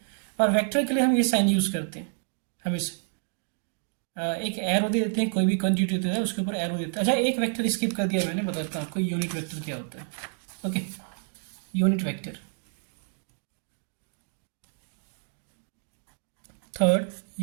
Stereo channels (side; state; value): left; silent; 59 dB below the other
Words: और वेक्टर के लिए हम ये साइन यूज़ करते हैं हमेशा, एक एरो दे देते हैं, कोई भी क्वांटिटी होता है उसके ऊपर एरो देते हैं। अच्छा, एक वेक्टर स्किप कर दिया मैंने, बताता हूँ आपको यूनिट वेक्टर क्या होता है। Okay, unit vector. Third,